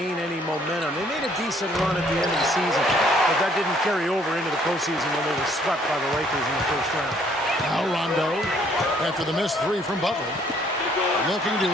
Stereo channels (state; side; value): normal; both; correlation 0.63